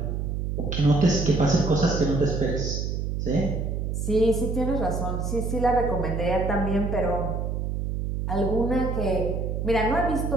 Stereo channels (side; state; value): right; noise; hum, 2 dB below the sound